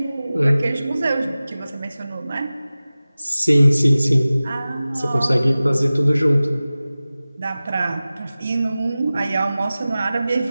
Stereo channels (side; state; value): both; inverted; correlation -0.97